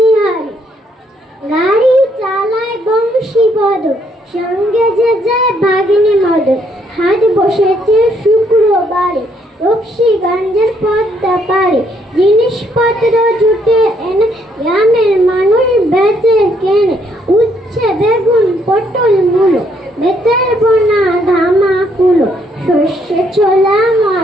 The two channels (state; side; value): normal; both; correlation 0.70